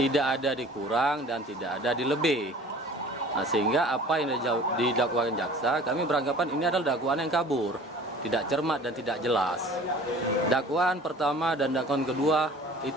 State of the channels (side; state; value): both; normal; correlation 0.46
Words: ada dikurang dan tidak ada dilebih. Nah, sehingga apa yang didakwakan jaksa, kami beranggapan ini adalah dakwaan yang kabur, tidak cermat dan tidak jelas. Dakwaan pertama dan dakwaan kedua